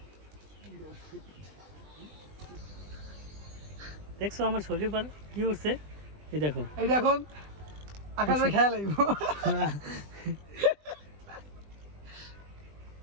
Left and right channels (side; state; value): left; late; 20 ms